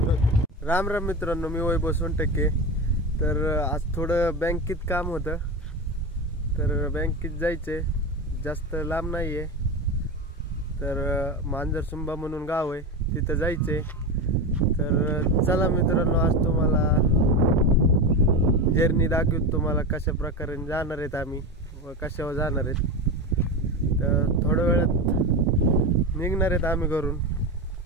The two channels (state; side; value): normal; both; correlation 0.20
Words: राम राम मित्रांनो, मी वैभव सोनटक्के. तर आज थोडं बँकेत काम होतं, तर बँकेत जायचंय. जास्त लांब नाही आहे, तर मांजरसुंबा म्हणून गाव आहे, तिथं जायचंय. तर चला मित्रांनो, आज तुम्हाला जर्नी दाखवतो, तुम्हाला कशा प्रकारे जाणार आहेत आम्ही व कशावर जाणार आहेत. तर थोड्या वेळात निघणार आहेत आम्ही घरून.